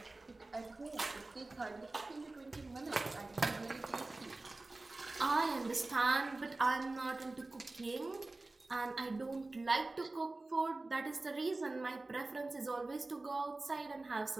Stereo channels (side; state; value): left; quieter; 3.1 dB